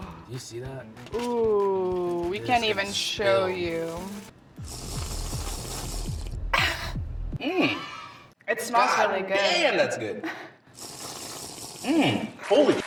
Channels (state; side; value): identical; both; correlation 1.00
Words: Do you see that? Ooh, we This can't is even show spilled. you. It smells God really good. damn, that's good. Holy